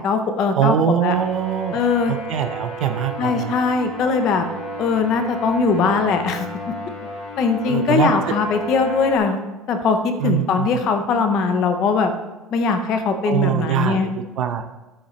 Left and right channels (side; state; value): both; normal; correlation 0.38